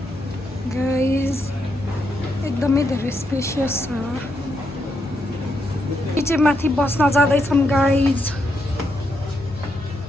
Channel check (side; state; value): both; normal; correlation 0.80